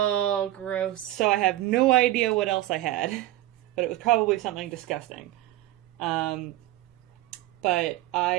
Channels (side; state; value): left; quieter; 15.4 dB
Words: gross. So I have no idea what else I had. But it was probably something disgusting. But